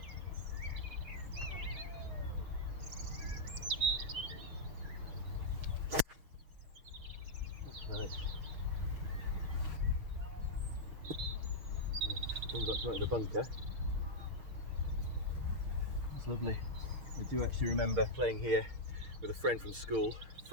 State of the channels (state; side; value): late; left; 6.5 ms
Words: That's nice. Comes up to the bunker. That's lovely. I do actually remember playing here with a friend from school,